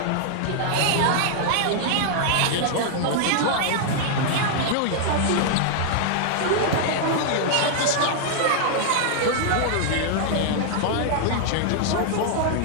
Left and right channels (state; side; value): different; both; correlation -0.01